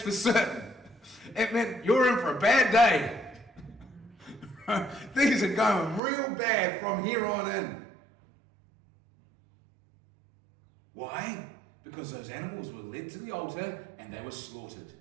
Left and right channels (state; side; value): drops out; left; at 6.0 s